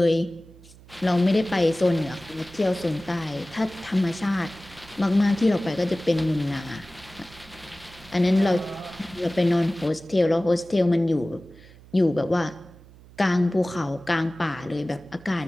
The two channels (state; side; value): noise; right; hum, 23 dB below the sound